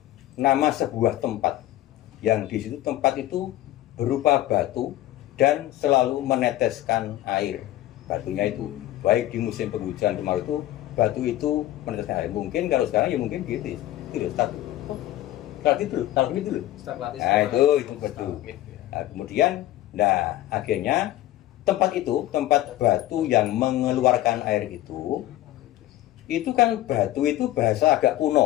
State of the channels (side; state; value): right; quieter; 14.7 dB